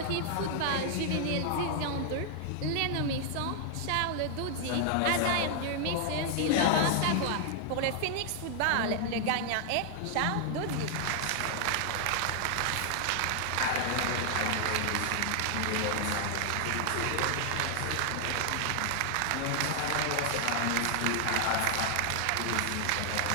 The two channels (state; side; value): different; both; correlation 0.00